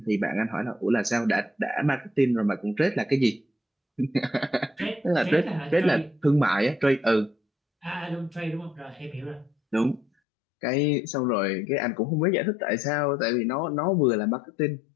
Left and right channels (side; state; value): right; drops out; at 10.1 s